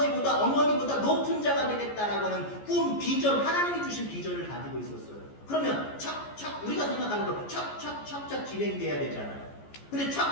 어머니보다 높은 자가 되겠다라고 하는 꿈, 비전, 하나님이 주신 비전을 가지고 있었어요. 그러면 우리가 생각할 진행돼야 되잖아요. 근데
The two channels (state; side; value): late; right; 14 ms